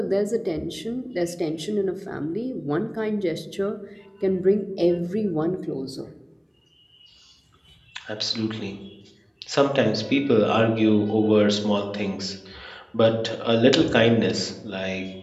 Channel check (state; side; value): identical; both; correlation 1.00